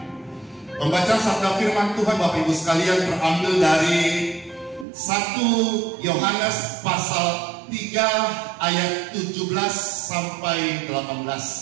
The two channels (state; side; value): drops out; left; at 4.9 s